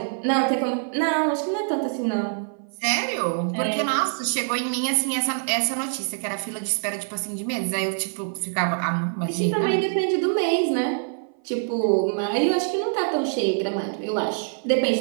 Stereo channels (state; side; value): silent; left; 57 dB below the other